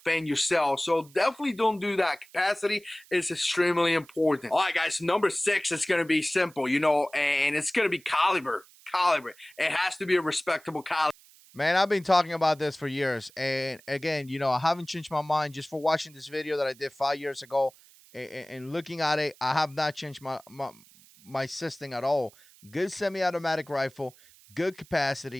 yourself. So definitely don't do that. Capacity is extremely important. All right, guys. Number 6 is gonna be simple, and it's gonna be caliber. Caliber. It has to be a respectable caliber. Man, I've been talking about this for years. And again, I haven't changed my mind just for watching this video that I did 5 years ago and looking at it. I have not changed my system at all. Good semi automatic rifle, good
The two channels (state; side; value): noise; right; hiss, 25 dB below the sound